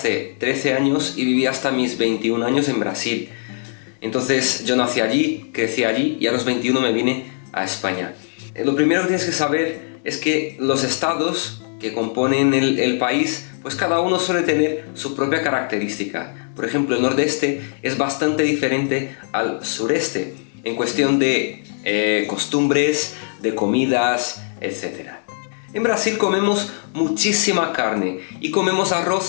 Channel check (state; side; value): silent; right; 65 dB below the other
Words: 13 años y viví hasta mis 21 años en Brasil. Entonces yo nací allí, crecí allí y a los 21 me vine a España. Lo primero que tienes que saber es que los estados que componen el país, pues cada uno suele tener su propia característica. Por ejemplo, el nordeste es bastante diferente al sureste en cuestión de costumbres, de comidas, etc. En Brasil comemos muchísima carne y comemos